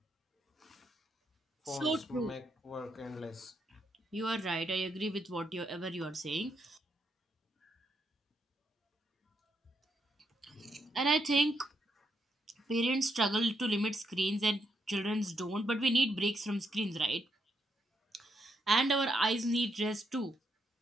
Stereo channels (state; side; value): normal; both; correlation 0.79